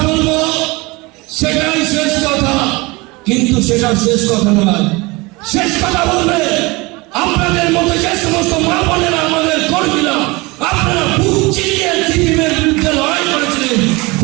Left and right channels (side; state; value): left; quieter; 24.3 dB